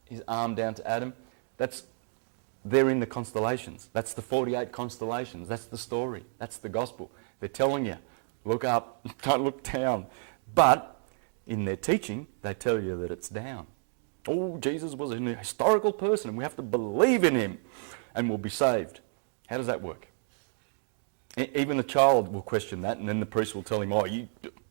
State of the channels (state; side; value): silent; left; 58 dB below the other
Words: his arm down to Adam. They're in the constellations. That's the 48 constellations. That's the story. That's the gospel. They're telling you, look up, don't look down. But in their teaching, they tell you that it's down. Oh, Jesus was a historical person. We have to believe in him and we'll be saved. How does that work? Even a child will question that, and then the priest will tell him, oh, you